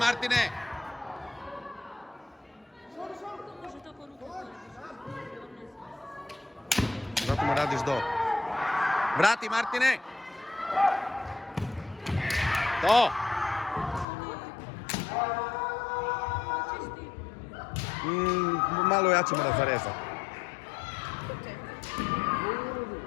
Zato mu radiš do. Vrati, Martine! To! Malo jače mora zarezati.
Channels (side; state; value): right; drops out; at 14.1 s